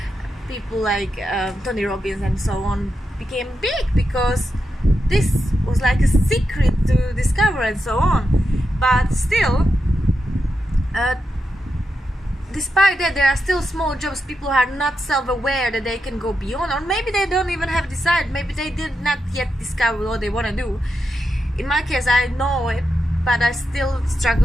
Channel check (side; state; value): both; normal; correlation 0.87